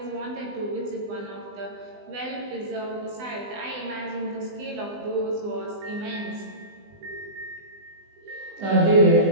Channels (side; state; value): left; late; 20 ms